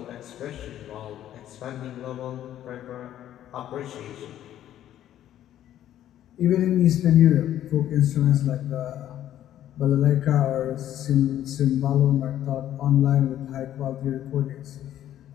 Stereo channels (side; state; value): right; quieter; 11.8 dB